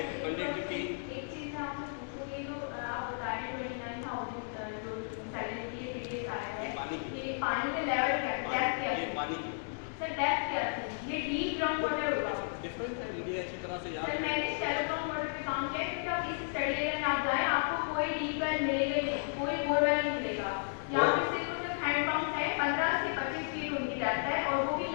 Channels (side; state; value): right; silent; digital silence